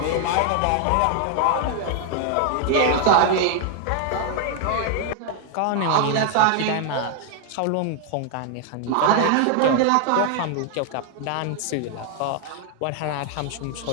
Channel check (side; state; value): both; different; correlation 0.00